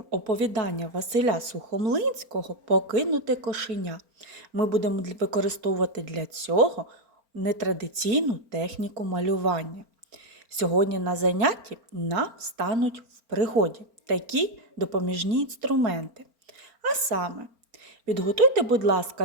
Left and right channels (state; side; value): late; left; 4.4 ms